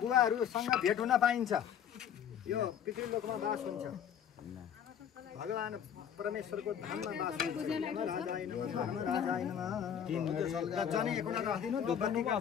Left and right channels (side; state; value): right; quieter; 8.7 dB